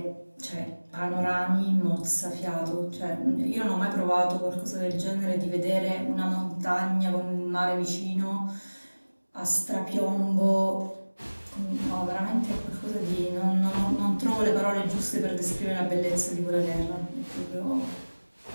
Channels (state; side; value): inverted; both; correlation -1.00